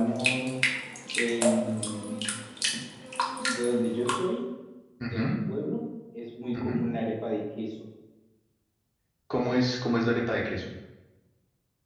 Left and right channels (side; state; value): both; identical; correlation 1.00